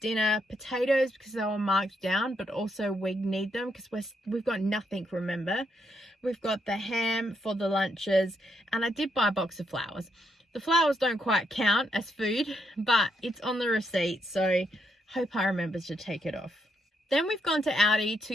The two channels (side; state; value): both; normal; correlation 0.77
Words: Potatoes because they were marked down, but also we need them because we've got nothing, remember. We've got the ham for the lunches, and I did buy a box of flowers. The flowers don't quite count as food, but it's on the receipt, so hope I remember to take it off. Then we've gone to Aldi